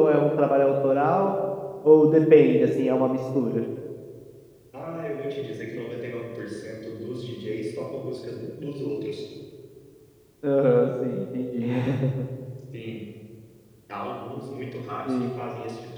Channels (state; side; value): identical; both; correlation 1.00